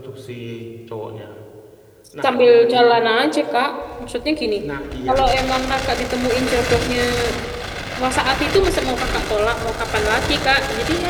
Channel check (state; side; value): identical; both; correlation 1.00